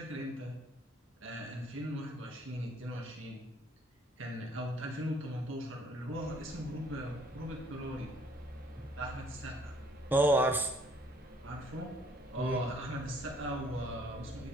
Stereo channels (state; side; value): normal; both; correlation 0.61